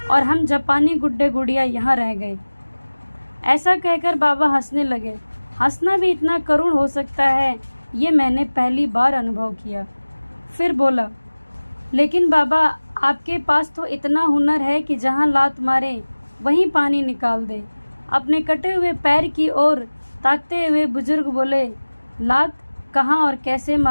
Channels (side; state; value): both; inverted; correlation -1.00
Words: और हम जापानी गुड्डे गुड़िया यहाँ रह गए। ऐसा कहकर बाबा हंसने लगे। हंसना भी इतना करुण हो सकता है, ये मैंने पहली बार अनुभव किया। फिर बोला, लेकिन बाबा आपके पास तो इतना हुनर है कि जहाँ लात मारे वहीं पानी निकाल दे। अपने कटे हुए पैर की ओर ताकते हुए बुजुर्ग बोले, लात कहाँ और कैसे